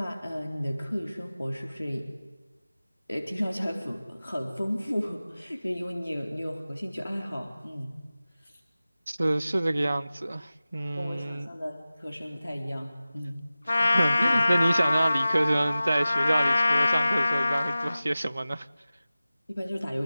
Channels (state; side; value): inverted; both; correlation -0.97